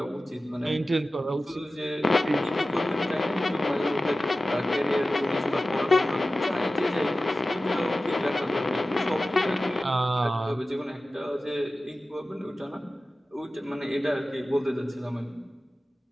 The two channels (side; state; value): both; normal; correlation 0.95